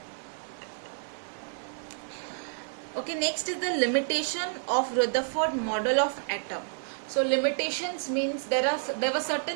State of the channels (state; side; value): silent; left; digital silence